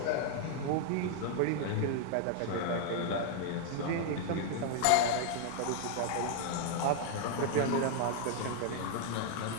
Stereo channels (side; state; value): both; different; correlation 0.00